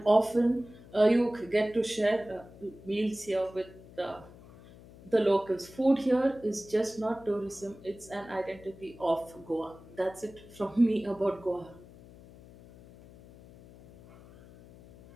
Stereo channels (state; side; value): noise; left; hum, 21 dB below the sound